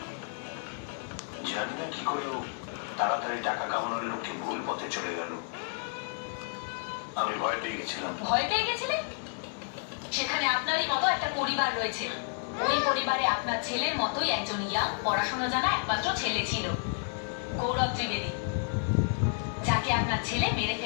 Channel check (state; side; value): silent; right; 57 dB below the other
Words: জানি না কি করে তাড়াতাড়ি টাকা কামানোর লক্ষ্যে ভুল পথে চলে গেল। আমি ভয় পেয়ে গেছিলাম। ভয় পেয়ে গেছিলেন? সেখানে আপনারই মতো একটা পরিবার রয়েছে। ওই পরিবারে আপনার ছেলের মতোই একজন ইয়াং, পড়াশোনা জানা একমাত্র ছেলে ছিল, গৌরব ত্রিবেদী, যাকে আপনার ছেলে মেরে